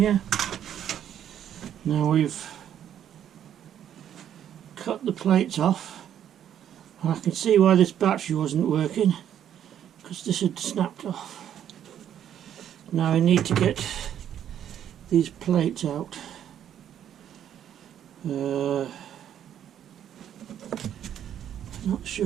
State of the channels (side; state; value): left; quieter; 10.0 dB